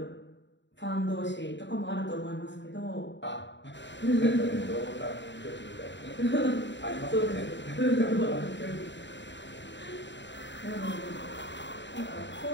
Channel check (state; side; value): late; right; 0.52 ms